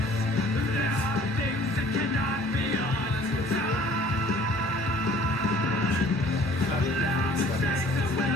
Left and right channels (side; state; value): both; normal; correlation 0.53